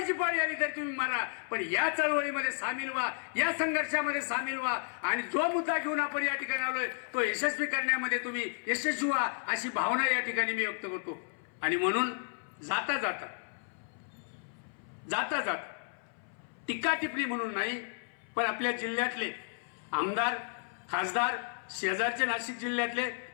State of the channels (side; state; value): right; silent; 56 dB below the other